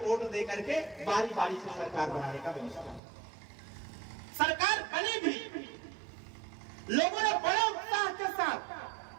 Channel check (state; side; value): drops out; left; at 3.0 s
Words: दे करके बारी बारी से सरकार बनाने का व्यवस्था। सरकार बनी भी, लोगों ने बड़े उत्साह के साथ